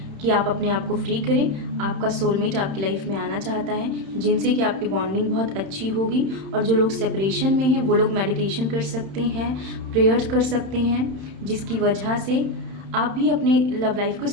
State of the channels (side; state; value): left; late; 31 ms